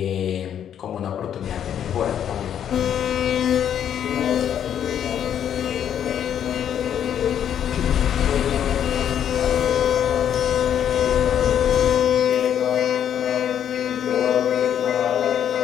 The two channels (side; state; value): right; quieter; 9.5 dB